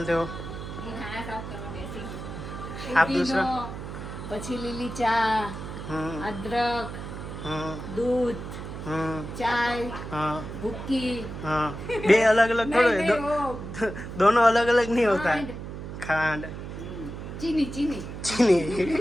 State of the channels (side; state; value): right; noise; hum, 9 dB below the sound